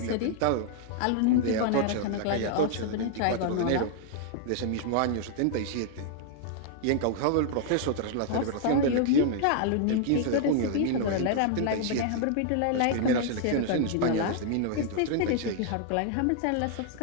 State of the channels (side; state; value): both; different; correlation -0.01